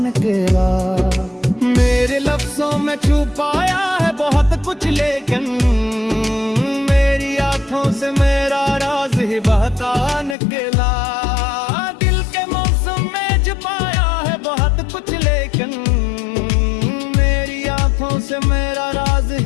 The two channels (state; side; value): drops out; right; at 10.4 s